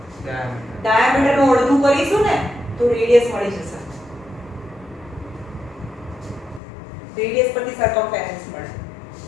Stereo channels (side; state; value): right; drops out; at 6.6 s